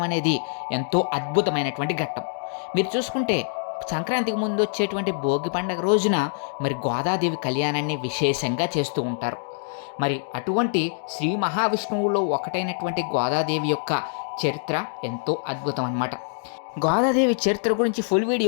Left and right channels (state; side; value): silent; right; digital silence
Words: అనేది ఎంతో అద్భుతమైనటువంటి ఘట్టం. మీరు చూసుకుంటే సంక్రాంతికి ముందు వచ్చేటువంటి భోగి పండుగ రోజున మరి గోదాదేవి కళ్యాణాన్ని విశేషంగా చేస్తూ ఉంటారు. మరి అటువంటి శ్రీ మహావిష్ణువులో ఒకటైనటువంటి గోదాదేవి యొక్క చరిత్ర ఎంతో అద్భుతం అన్నమాట. గోదాదేవి చరిత్ర గురించి ఫుల్